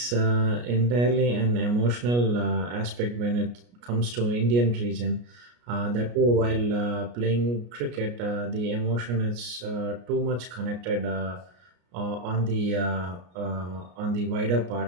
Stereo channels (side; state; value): left; late; 33 ms